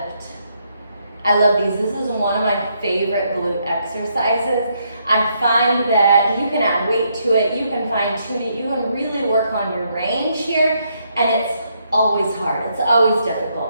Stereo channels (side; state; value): both; inverted; correlation -0.75